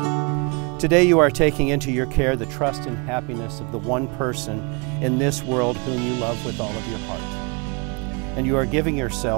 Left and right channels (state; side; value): quieter; left; 31.9 dB